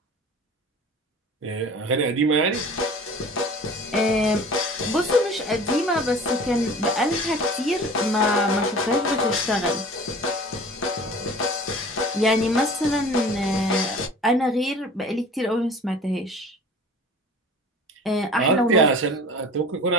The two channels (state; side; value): normal; both; correlation 0.43